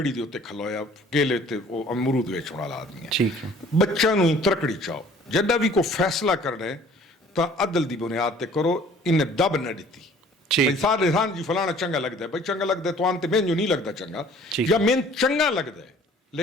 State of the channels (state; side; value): normal; both; correlation 0.53